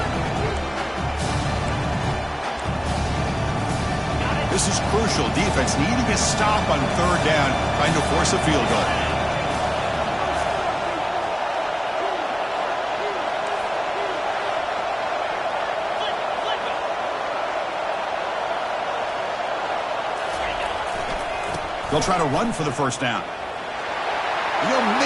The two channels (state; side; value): identical; both; correlation 1.00